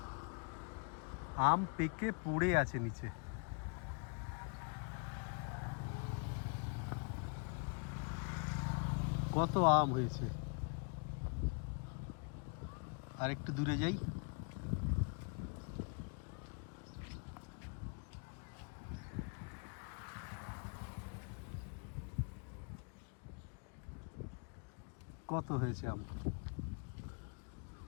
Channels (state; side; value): quieter; right; 37.5 dB